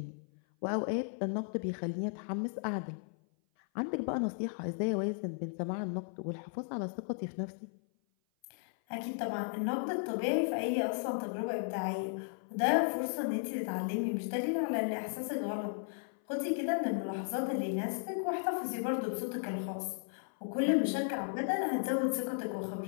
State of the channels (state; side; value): silent; right; 54 dB below the other